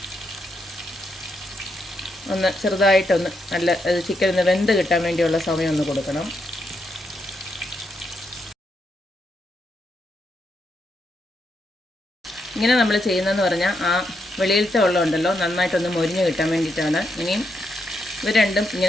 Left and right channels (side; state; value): both; normal; correlation 0.81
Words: ഒന്ന് ചെറുതായിട്ടൊന്ന് നല്ല ചിക്കൻ ഒന്ന് വെന്ത് കിട്ടാൻ വേണ്ടിയുള്ള സമയം ഒന്ന് കൊടുക്കണം. ഇങ്ങനെ നമ്മൾ ചെയ്യുന്നതെന്ന് പറഞ്ഞാൽ ആ വെളിയിലത്തെ വെള്ളം ഉണ്ടല്ലോ നന്നായിട്ടൊന്ന് മൊരിഞ്ഞ് കിട്ടാൻ വേണ്ടിയിട്ടാണ്. ഇനിയും ഇവ രണ്ടും